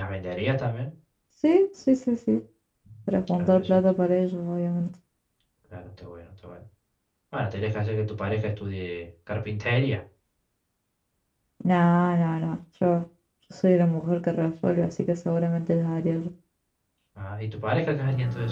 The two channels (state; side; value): identical; both; correlation 1.00